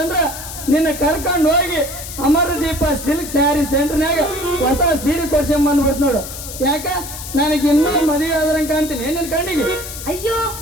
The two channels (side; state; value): left; noise; hiss, 10 dB below the sound